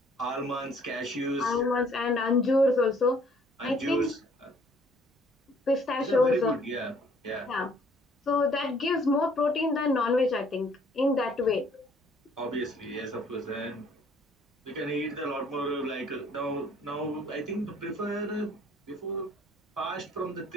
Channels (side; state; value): both; normal; correlation 0.60